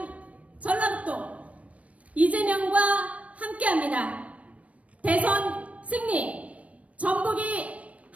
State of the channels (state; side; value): late; left; 0.065 ms